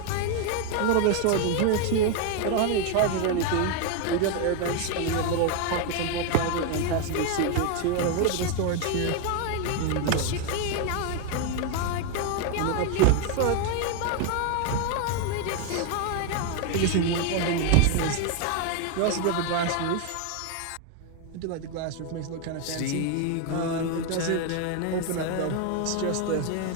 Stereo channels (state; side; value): different; both; correlation 0.01